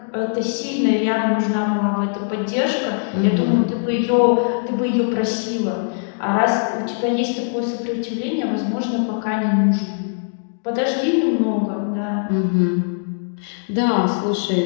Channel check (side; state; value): right; silent; digital silence